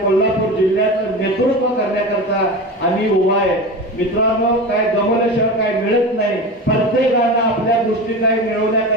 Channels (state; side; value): normal; both; correlation 0.27